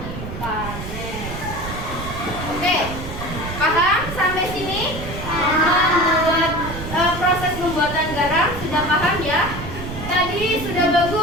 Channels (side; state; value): right; noise; rumble, 8 dB below the sound